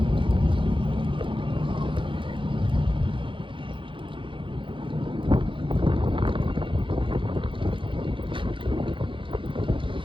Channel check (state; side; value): late; left; 0.25 ms